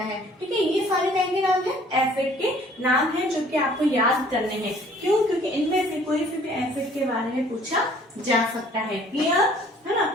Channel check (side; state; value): both; normal; correlation 0.56